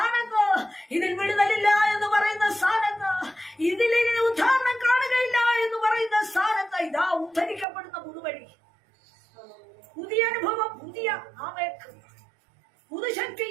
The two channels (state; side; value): drops out; left; at 7.7 s